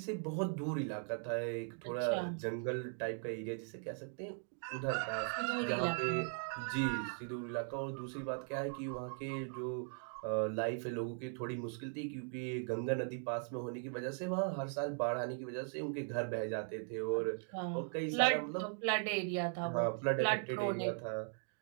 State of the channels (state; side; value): silent; left; 52 dB below the other